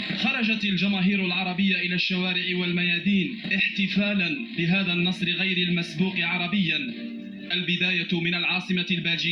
خرجت الجماهير العربية إلى الشوارع والميادين احتفالا بهذا النصر غير المسبوق عربيا. البداية من العاصمة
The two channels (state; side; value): identical; both; correlation 1.00